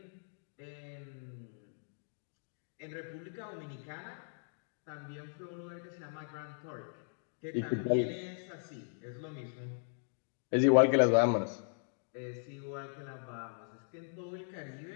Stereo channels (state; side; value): silent; right; digital silence